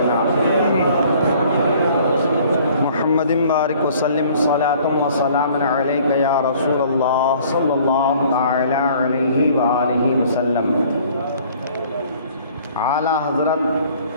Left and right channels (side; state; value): both; inverted; correlation -0.55